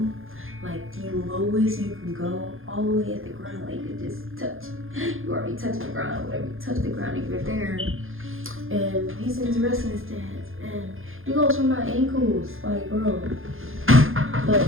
Like, the lowest you can go, all the way at the ground, like you just touch. You already touched the ground, whatever, you touch the ground if you're there. And he's in his wrestling stance, and he goes for my ankles, like, bro. But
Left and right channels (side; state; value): left; late; 0.60 ms